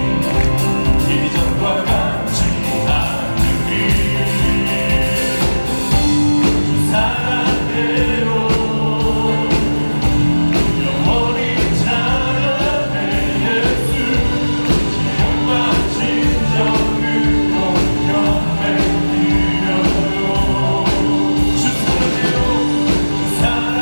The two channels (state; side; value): inverted; both; correlation -1.00